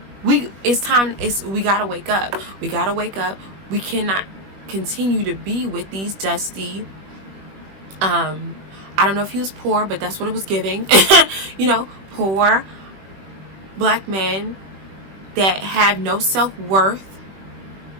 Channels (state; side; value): late; left; 21 ms